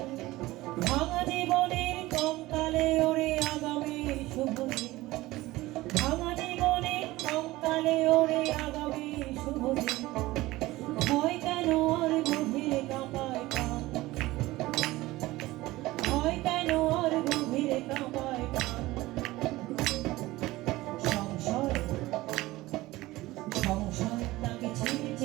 ভাঙা জীবনের কঙ্কালে ওরে আগামীর শুভ দিন, ভাঙা জীবনের কঙ্কালে ওরে আগামীর শুভ দিন। ভয় কেন আর গভীরে কাঁপায় প্রাণ, ভয় কেন আর গভীরে কাঁপায় প্রাণ। সংশয় সংশয় তাকে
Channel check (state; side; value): quieter; left; 18.6 dB